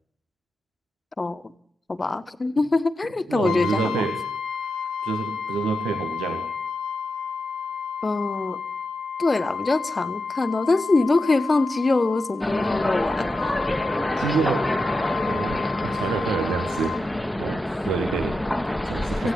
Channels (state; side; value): normal; both; correlation 0.89